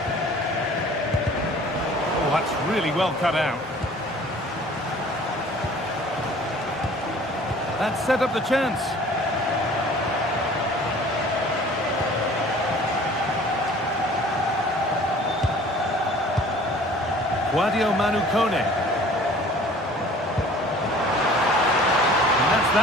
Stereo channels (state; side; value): normal; both; correlation 0.49